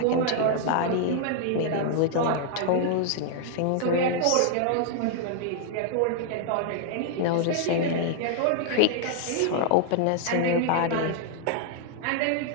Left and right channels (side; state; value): both; different; correlation 0.00